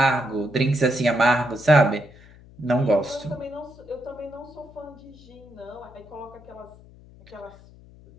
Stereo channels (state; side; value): noise; left; hum, 22 dB below the sound